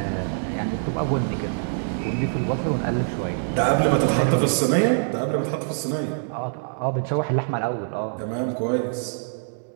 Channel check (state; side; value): silent; left; digital silence